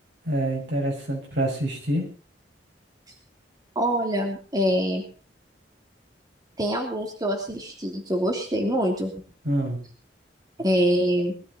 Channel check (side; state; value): both; normal; correlation 0.63